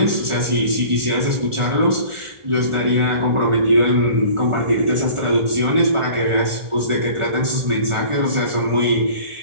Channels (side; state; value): left; late; 1.4 ms